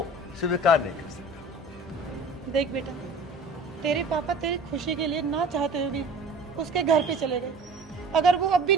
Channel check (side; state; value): both; normal; correlation 0.44